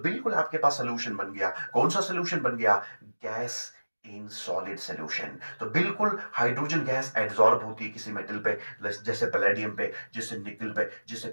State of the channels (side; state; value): both; inverted; correlation -1.00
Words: आपके पास सोल्यूशन बन गया। कौन सा सोल्यूशन बन गया? Gas in solid solution. तो बिल्कुल हाइड्रोजन गैस एड्सॉर्ब होती है किसी मेटल पे, जैसे पैलेडियम पे, जैसे निकल पे, जैसे